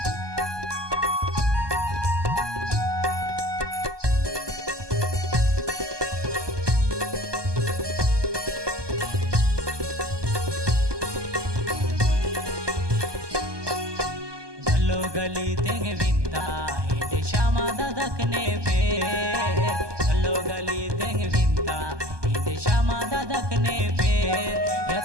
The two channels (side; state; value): left; late; 1.2 ms